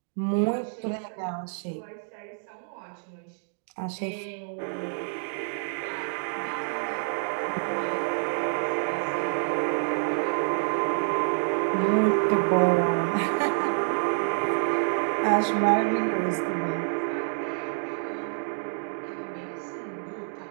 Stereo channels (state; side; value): silent; left; digital silence